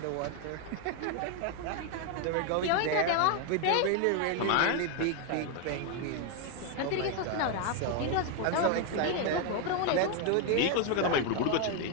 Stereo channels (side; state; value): both; different; correlation 0.01